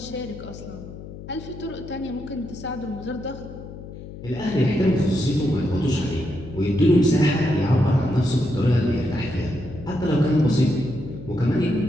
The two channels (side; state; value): left; noise; hum, 13 dB below the sound